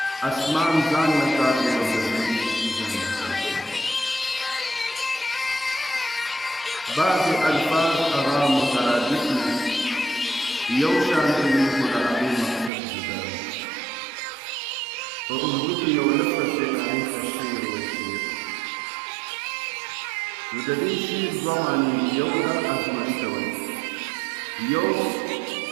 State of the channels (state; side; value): drops out; left; at 12.7 s